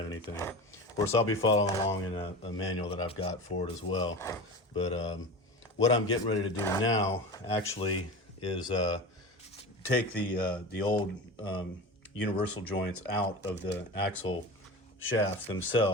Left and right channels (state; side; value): normal; both; correlation 0.30